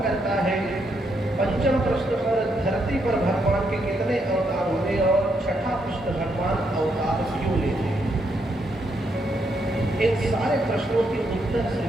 करता है? पंचम प्रश्न पर धरती पर भगवान के कितने अवतार हुए? और छठा प्रश्न, भगवान अवतार क्यों लेते हैं? इन सारे प्रश्नों के उत्तर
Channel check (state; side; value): normal; both; correlation 0.77